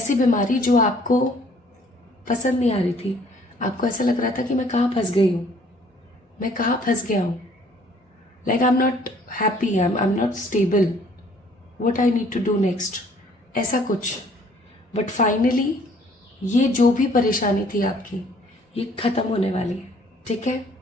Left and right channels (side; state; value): both; normal; correlation 0.59